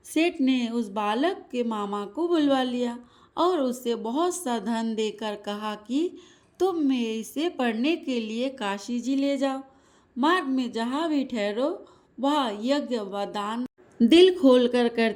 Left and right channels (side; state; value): both; identical; correlation 1.00